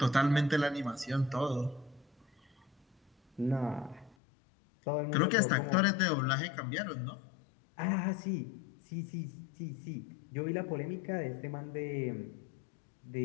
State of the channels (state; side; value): drops out; right; at 4.2 s